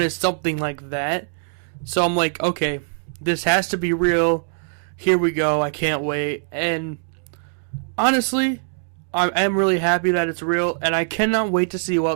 something like that. So I'm like, okay, this has to be real. Here we go. I can't wait. And honestly, I am really happy that it's real, and I cannot wait to see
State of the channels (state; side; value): silent; left; digital silence